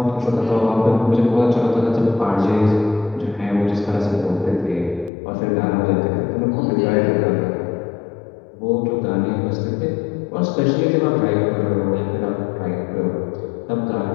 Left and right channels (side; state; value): right; drops out; at 5.1 s